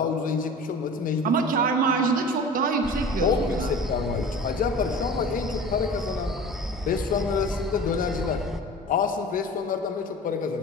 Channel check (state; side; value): normal; both; correlation 0.38